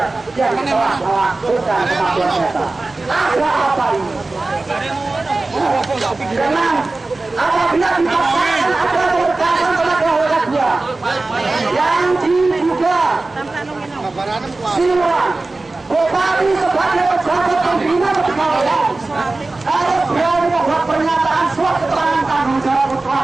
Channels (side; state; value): left; quieter; 3.3 dB